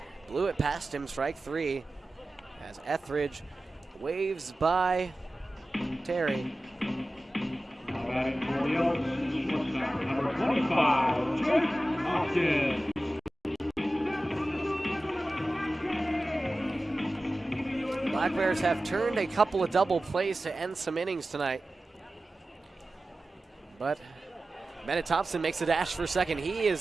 Blew it past him. Strike 3 as Etheridge waves by Terry. Now batting for the Elks, shortstop, number 25, Jake Hoskins. Black Bears have turned a couple of double plays to end some innings tonight. But Bennett Thompson makes a dash for second. He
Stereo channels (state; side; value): normal; both; correlation 0.95